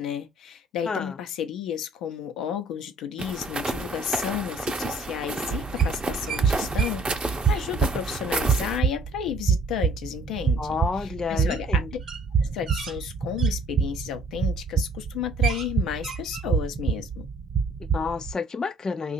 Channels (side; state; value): both; normal; correlation 0.57